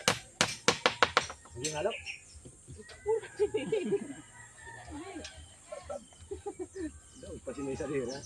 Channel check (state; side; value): noise; right; hum, 27 dB below the sound